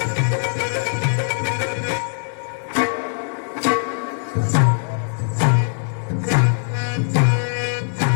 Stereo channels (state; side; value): silent; right; 65 dB below the other